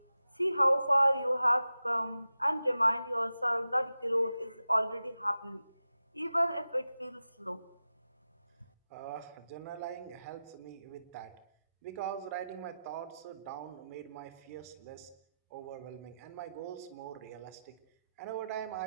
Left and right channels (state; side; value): inverted; both; correlation -0.93